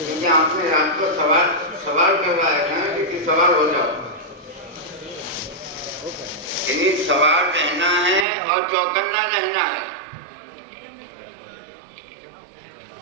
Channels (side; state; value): left; drops out; at 8.2 s